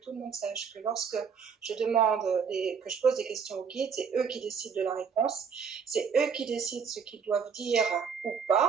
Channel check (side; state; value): left; quieter; 6.4 dB